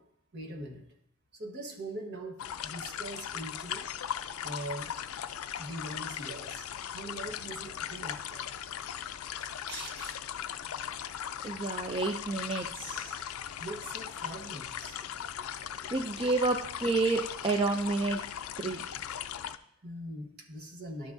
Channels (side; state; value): both; normal; correlation 0.35